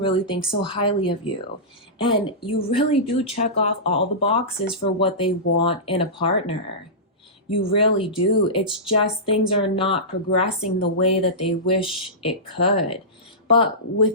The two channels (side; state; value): both; normal; correlation -0.18